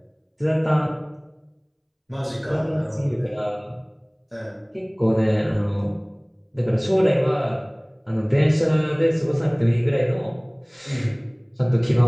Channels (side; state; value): both; identical; correlation 1.00